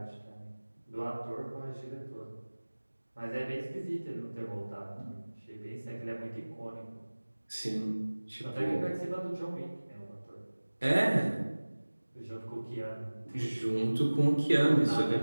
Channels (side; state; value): both; inverted; correlation -1.00